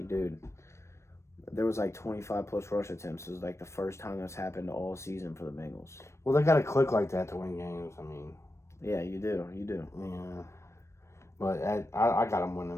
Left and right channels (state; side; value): late; right; 0.13 ms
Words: dude, there was like 25 plus rush attempts. It was like the first time that's happened all season for the Bengals. Well, they got to click like that to win games. I mean, yeah, you do. Yeah, but I got them